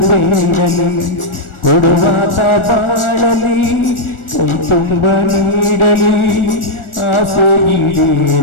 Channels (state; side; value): late; right; 1.4 ms